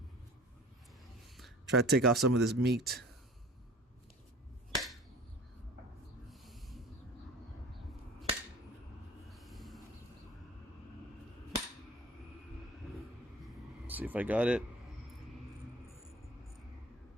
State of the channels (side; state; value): both; normal; correlation 0.43